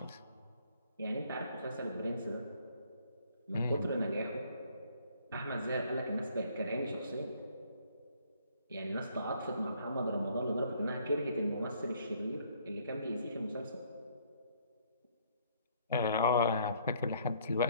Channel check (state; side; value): inverted; both; correlation -0.63